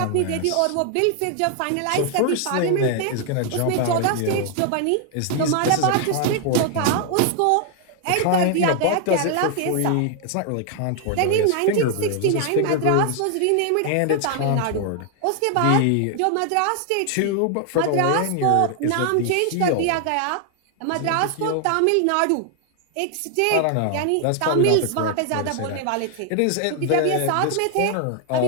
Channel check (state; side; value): different; both; correlation 0.00